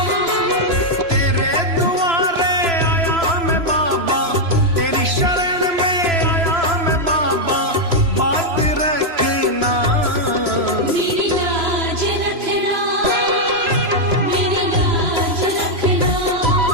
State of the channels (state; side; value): late; left; 3.0 ms